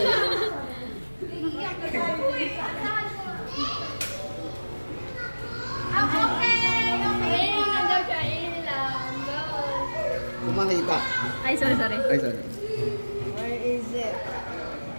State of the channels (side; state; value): both; inverted; correlation -1.00